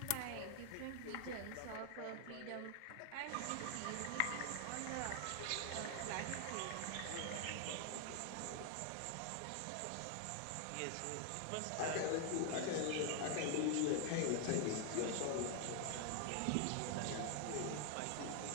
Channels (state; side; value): different; both; correlation 0.00